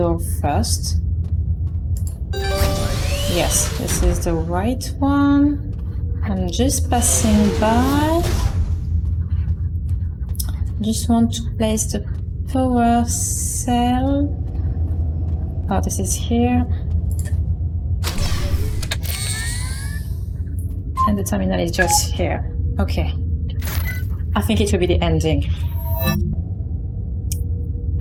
first. Yes, this is the right one. I'm just passing by. Just want to place the power cell. Oh, this is here. And the terminal is just here. Okay. I think it will be the ending.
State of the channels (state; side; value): identical; both; correlation 1.00